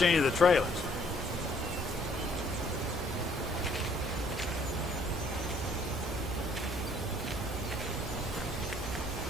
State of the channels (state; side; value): normal; both; correlation 0.62